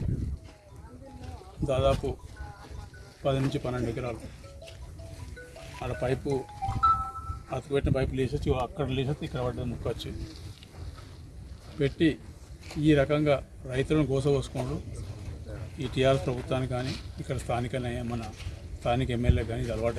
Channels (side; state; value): both; identical; correlation 1.00